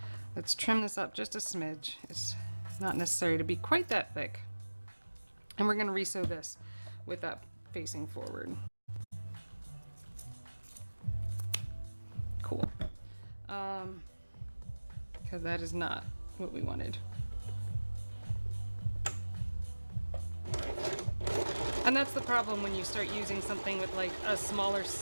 Let's trim this up just a smidge. It's not necessary to be quite that thick. And we're gonna resew this with that facing forward. Cool. Because that is not what we wanted. And that's the problem when you start using something with like a smaller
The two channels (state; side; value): inverted; both; correlation -1.00